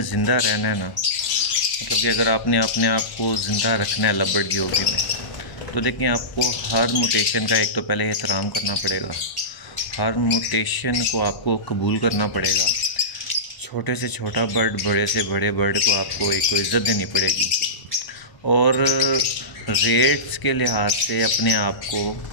زندہ رہنا ہے نا، مطلب کہ اگر آپ نے اپنے آپ کو زندہ رکھنا ہے لو برڈ کی ہابی میں، تو دیکھیں آپ کو ہر موٹیشن کا ایک تو پہلے احترام کرنا پڑے گا، ہر موٹیشن کو آپ کو قبول کرنا پڑے گا۔ چھوٹے سے چھوٹا برڈ، بڑے سے بڑے برڈ کو آپ کو ایک تو عزت دینی پڑے گی، اور ریٹس کے لحاظ سے اپنے آپ کو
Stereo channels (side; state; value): right; late; 1.0 ms